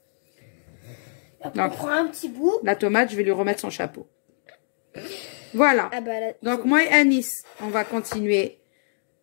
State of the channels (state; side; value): silent; right; digital silence